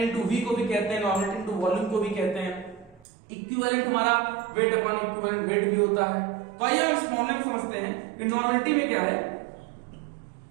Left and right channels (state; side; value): drops out; left; at 3.1 s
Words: into V को भी कहते हैं, नॉर्मेलिटी इनटू वॉल्यूम को भी कहते हैं। इक्विवेलेंट हमारा वेट अपॉन इक्विवेलेंट वेट भी होता है। तो आइए हम इस फॉर्मूले में समझते हैं कि नॉर्मेलिटी में क्या है।